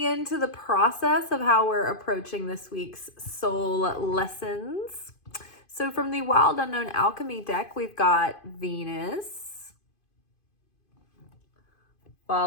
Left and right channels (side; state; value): right; late; 2.5 ms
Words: into the process of how we're approaching this week's soul lessons. So from the Wild Unknown Alchemy deck, we've got Venus,